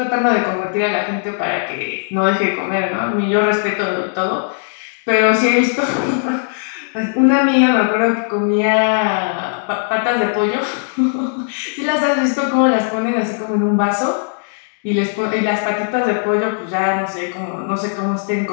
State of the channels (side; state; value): right; silent; digital silence